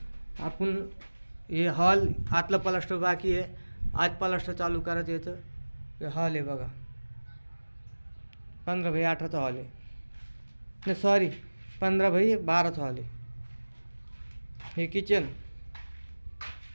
आपण हे हॉल आतलं प्लास्टर बाकी आहे. आज प्लास्टर चालू करायचं याचं. हे हॉल आहे बघा, 15x18चा हॉल आहे. नाही सॉरी, 15x12चा हॉल आहे. हे किचन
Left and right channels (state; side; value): inverted; both; correlation -1.00